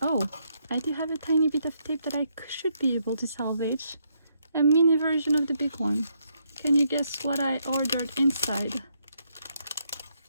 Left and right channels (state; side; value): inverted; both; correlation -0.76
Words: Oh, I do have a tiny bit of tape that I should be able to salvage. A mini version of the big one. Can you guess what I ordered inside?